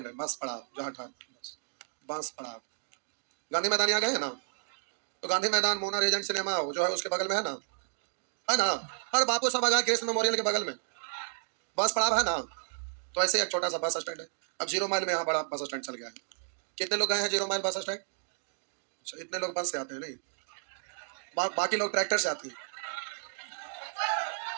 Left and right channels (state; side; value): silent; left; digital silence